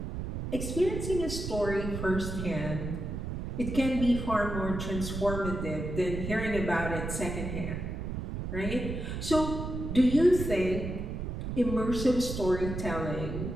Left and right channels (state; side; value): noise; right; rumble, 5 dB below the sound